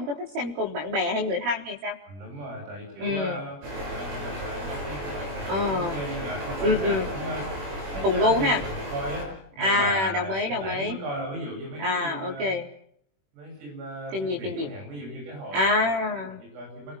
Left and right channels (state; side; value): late; left; 21 ms